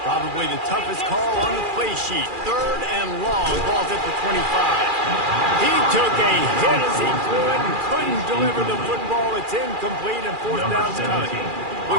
Probably the toughest call on the play sheet. 3rd and long. Ball's at the 25. He took a hit as he threw it and couldn't deliver the football. It's incomplete and 4th down's coming.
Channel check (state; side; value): late; left; 2.4 ms